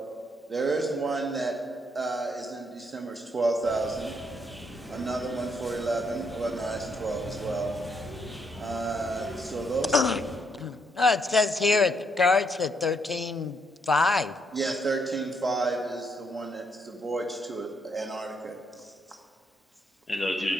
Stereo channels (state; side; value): normal; both; correlation 0.74